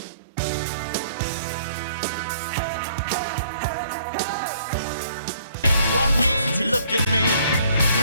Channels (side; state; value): both; inverted; correlation -0.61